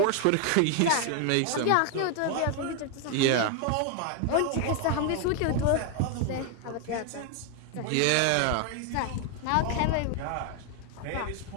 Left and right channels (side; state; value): both; different; correlation 0.00